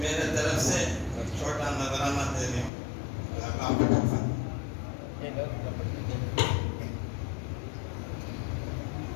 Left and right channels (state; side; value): drops out; right; at 2.7 s